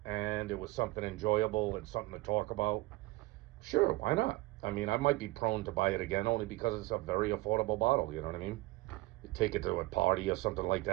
and it was something enjoyable and something to talk about. Sure, why not? I mean, I might be prone to buy it again only because it's a very affordable bottle, you know what I mean? You take it to a party or something like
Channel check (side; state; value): left; quieter; 20.6 dB